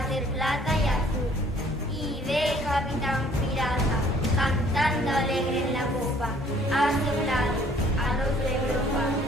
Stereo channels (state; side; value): normal; both; correlation 0.58